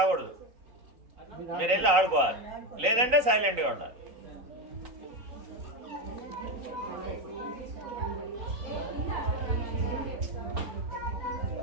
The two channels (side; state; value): left; late; 3.9 ms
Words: మీరు వెళ్ళి ఆడుకోవాలి, లేదంటే సైలెంట్గా ఉండాలి.